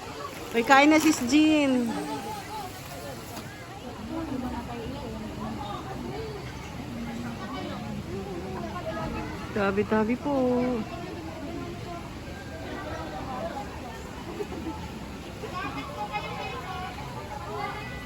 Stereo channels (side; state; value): both; identical; correlation 1.00